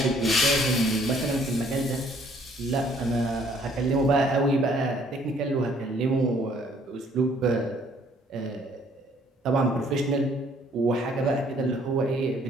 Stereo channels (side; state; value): both; normal; correlation 0.61